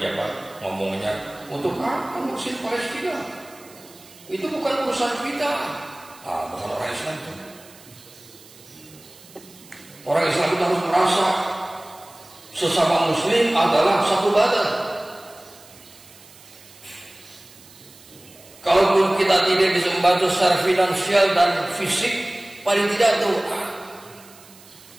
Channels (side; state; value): right; noise; hiss, 23 dB below the sound